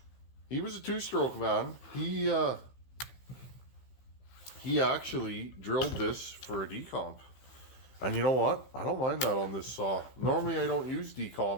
he was a 2-stroke man. He actually drilled this for a decomp. And you know what? I don't mind that on this saw. Normally I don't use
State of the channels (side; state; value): right; late; 15 ms